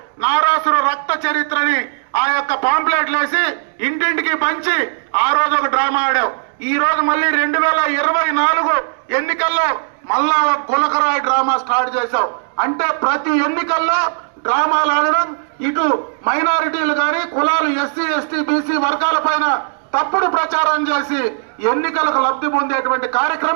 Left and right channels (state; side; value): silent; left; digital silence